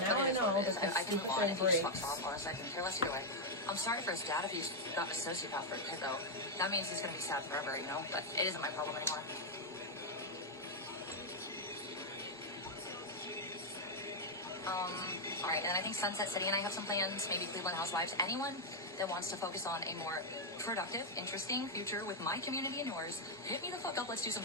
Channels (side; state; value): both; normal; correlation -0.01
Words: now I know because I can move on if he just breaks. fucks off. Honestly, I can care less either way. I'm sorry for his dad if he's got a sociopath for a kid, though. That means he's going to be sad forever, you know? But it isn't my problem anymore. Alright, and I think Sunset City and I have some plans, maybe Cleveland Housewives. Anyone that wants to focus on a more productive, interesting future with my community and yours, hit me the fuck up, let's do some